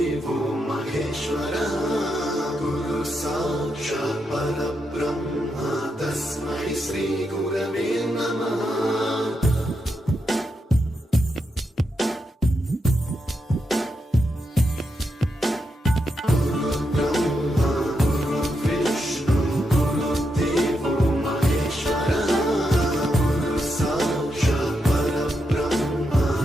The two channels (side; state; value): both; normal; correlation 0.83